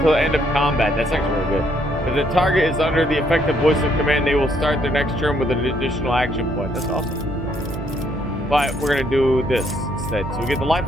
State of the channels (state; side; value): normal; both; correlation 0.70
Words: the end of combat. That's actually really good. If the target is under the effective voice of command, they will start their next turn with an additional action point. That's awesome. But we're gonna do this instead. So we get the Life